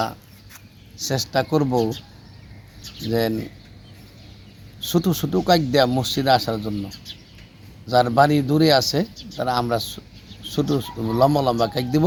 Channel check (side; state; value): both; identical; correlation 1.00